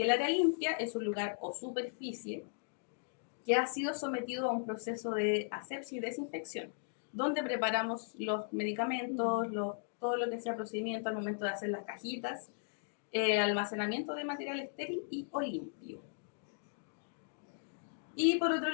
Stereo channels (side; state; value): right; silent; digital silence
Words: el área limpia es un lugar o superficie que ha sido sometido a un proceso de asepsia y desinfección, donde preparamos los medicamentos, todo lo que sea procedimiento al momento de hacer las cajitas, almacenamiento de material estéril y o limpio. Y por otro